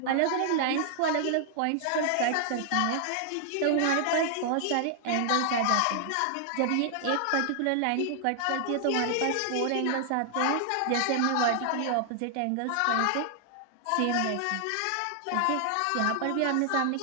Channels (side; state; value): both; different; correlation 0.00